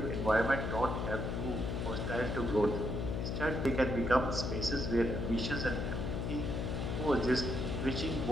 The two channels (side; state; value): left; noise; hum, 1 dB below the sound